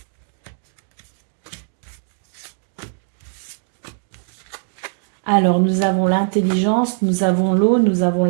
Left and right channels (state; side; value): silent; left; digital silence